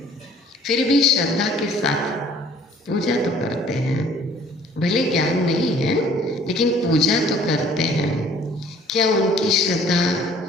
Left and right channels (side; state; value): both; normal; correlation 0.55